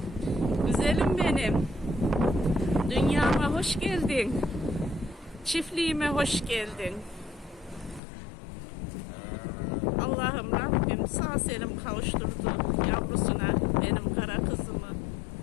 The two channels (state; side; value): drops out; right; at 8.0 s